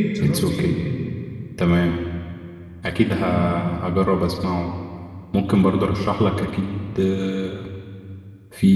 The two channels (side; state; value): both; identical; correlation 1.00